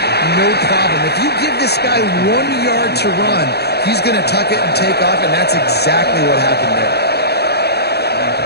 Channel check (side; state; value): right; late; 0.48 ms